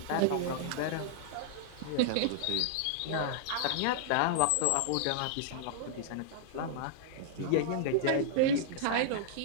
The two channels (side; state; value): both; different; correlation -0.01